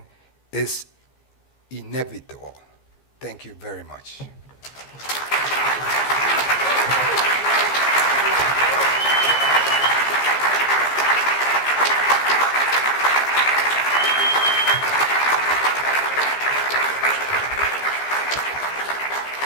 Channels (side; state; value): right; late; 15 ms